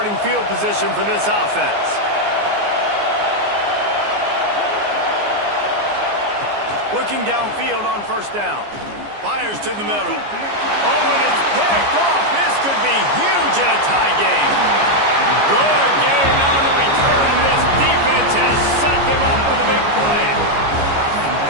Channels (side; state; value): left; late; 14 ms